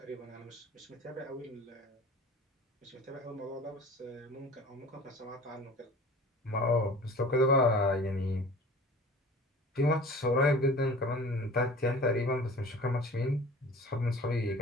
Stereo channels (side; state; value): both; normal; correlation 0.42